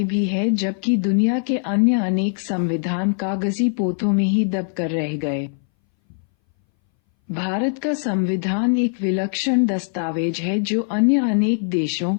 भी है, जबकि दुनिया के अन्य अनेक संविधान कागजी पोथों में ही दबकर रह गए। भारत का संविधान एक विलक्षण दस्तावेज है जो अन्य अनेक देशों,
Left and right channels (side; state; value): right; silent; 61 dB below the other